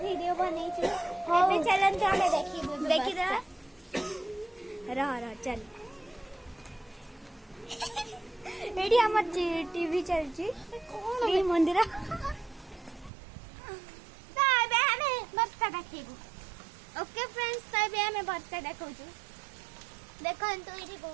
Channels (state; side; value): drops out; left; at 13.1 s